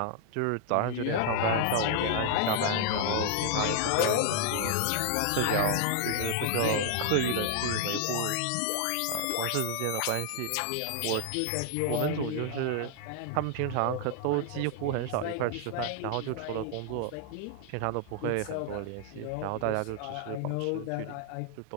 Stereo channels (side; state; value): both; different; correlation 0.00